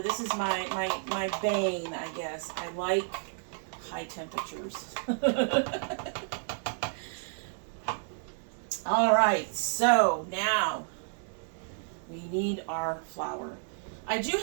This is my bane, I guess. I like high temperatures. All right, so now we need our flour. I do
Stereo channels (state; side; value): silent; left; digital silence